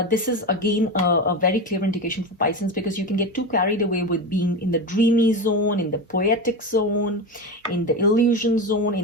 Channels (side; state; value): both; normal; correlation 0.20